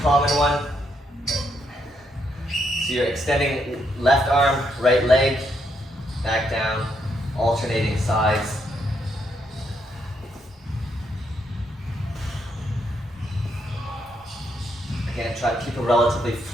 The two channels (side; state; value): both; normal; correlation 0.76